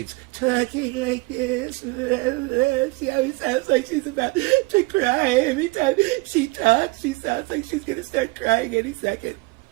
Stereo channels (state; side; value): quieter; left; 24.3 dB